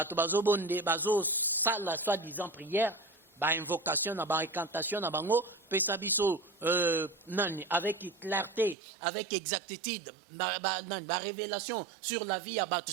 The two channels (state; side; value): drops out; left; at 8.8 s